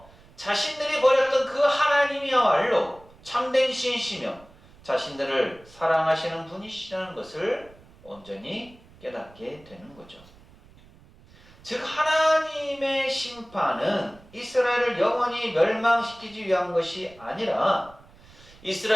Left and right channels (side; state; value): right; noise; rumble, 25 dB below the sound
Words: 자신들이 버렸던 그 하나님이야말로 참된 신이시며 자신들을 사랑하시는 분이시라는 것을 온전히 깨닫게 되는 거죠. 즉 하나님의 심판은 이스라엘을 영원히 멸망시키기 위한 것이 아니라